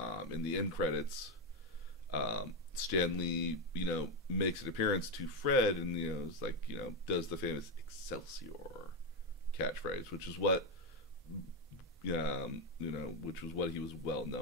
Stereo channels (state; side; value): normal; both; correlation 0.08